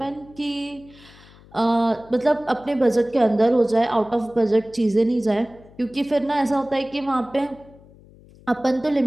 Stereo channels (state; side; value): noise; left; hum, 24 dB below the sound